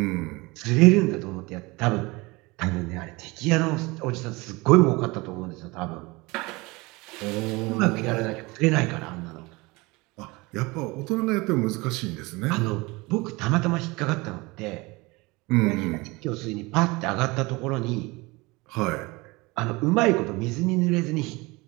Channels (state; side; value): quieter; left; 23.8 dB